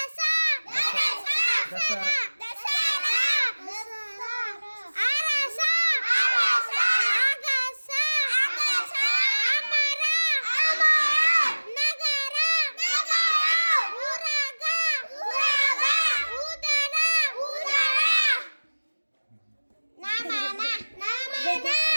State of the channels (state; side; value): inverted; both; correlation -1.00